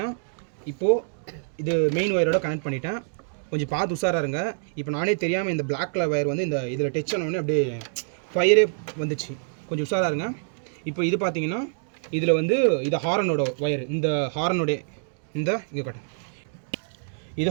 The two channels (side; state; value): left; silent; digital silence